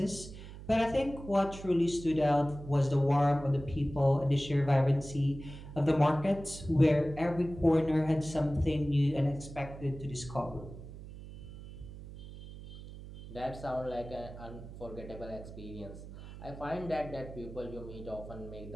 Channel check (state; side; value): noise; right; hum, 13 dB below the sound